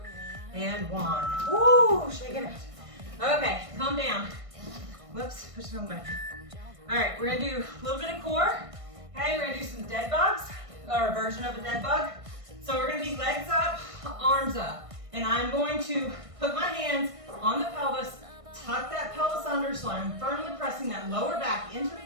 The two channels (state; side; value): late; left; 1.6 ms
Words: and 1. Woo, shaking it. Okay, calm down. Whoops, push it on back. All right, we're gonna do a little bit of core. Okay, we're gonna do some dead bugs, or a version of a dead bug. So we're gonna be legs up, arms up. And I'm going to put my hands on the pelvis, tuck that pelvis under so I'm firmly pressing that lower back into the